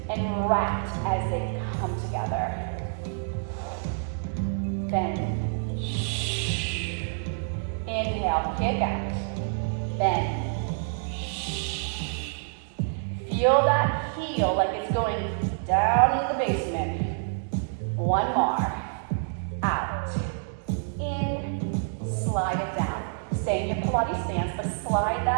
and wrapped as they come together. Bend. Inhale, kick out. Bend. Feel that heel like it's going down in the basement. One more. Out. In. Slide it down. Stay in your Pilates stance, but slide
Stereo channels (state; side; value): silent; left; digital silence